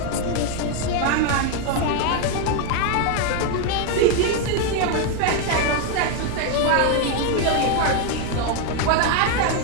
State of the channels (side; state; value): both; different; correlation 0.01